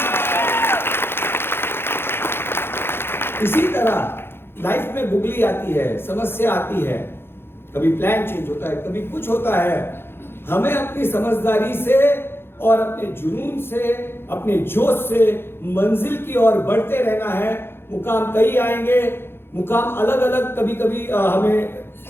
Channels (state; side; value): late; right; 0.11 ms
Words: इसी तरह लाइफ में बुगली आती है, समस्या आती है, कभी प्लान चेंज होता है, कभी कुछ होता है। हमें अपनी समझदारी से और अपने जुनून से, अपने जोश से मंजिल की ओर बढ़ते रहना है। मुकाम कई आएंगे, मुकाम अलग अलग, कभी कभी हमें